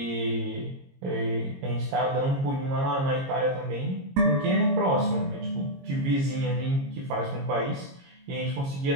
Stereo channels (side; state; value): left; late; 22 ms